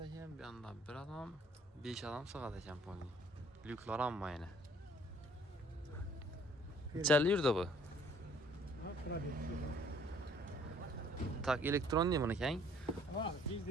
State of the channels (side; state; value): both; normal; correlation 0.58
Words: bir anda 1 adam, 5 adam sığad ekan pony. Lüklar amma yine. Nechanli yurdi bu? Tak elektron değil buniki hein? Ha, biz